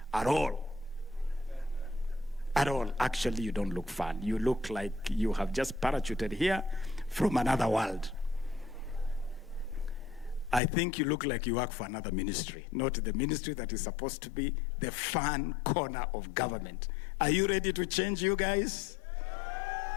at all. At all. Actually, you don't look fun. You look like you have just parachuted here from another world. I think you look like you work for another ministry, not the ministry that is supposed to be the fun corner of government. Are you ready to change, you guys?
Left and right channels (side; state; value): right; drops out; at 10.6 s